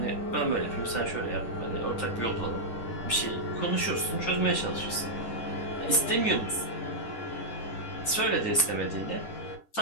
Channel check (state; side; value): late; right; 10 ms